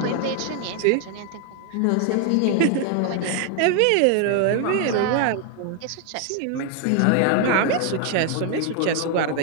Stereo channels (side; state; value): both; different; correlation 0.00